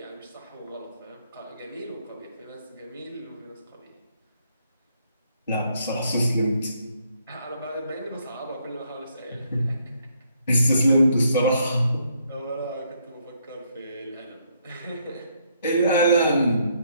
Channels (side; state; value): both; inverted; correlation -0.72